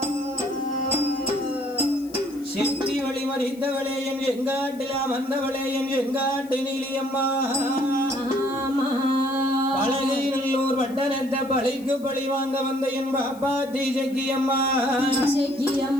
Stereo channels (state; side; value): noise; left; hiss, 23 dB below the sound